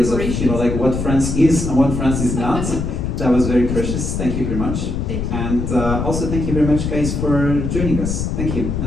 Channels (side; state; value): left; noise; rumble, 2 dB below the sound